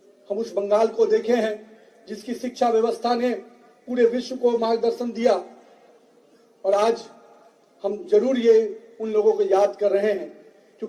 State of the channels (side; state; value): both; identical; correlation 1.00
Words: हम उस बंगाल को देखे हैं जिसकी शिक्षा व्यवस्था ने पूरे विश्व को मार्गदर्शन दिया। और आज हम जरूर ये उन लोगों को याद कर रहे हैं,